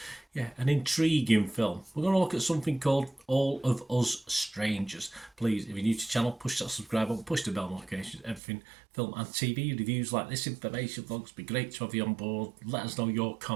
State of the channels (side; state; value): left; drops out; at 8.4 s